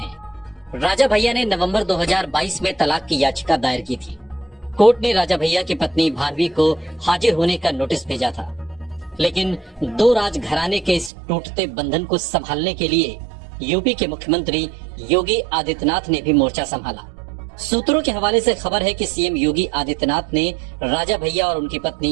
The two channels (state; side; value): drops out; left; at 11.1 s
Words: राजा भैया ने नवंबर 2022 में तलाक की याचिका दायर की थी। कोर्ट ने राजा भैया की पत्नी भानवी को हाजिर होने का नोटिस भेजा था, लेकिन दो राजघराने के इस टूटते बंधन को संभालने के लिए यूपी के मुख्यमंत्री योगी आदित्यनाथ ने भी मोर्चा संभाला। सूत्रों के हवाले से खबर है कि सीएम योगी आदित्यनाथ ने राजा भैया और उनकी